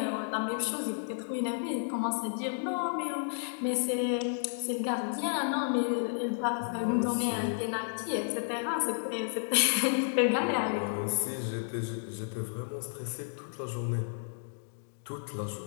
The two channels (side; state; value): right; silent; digital silence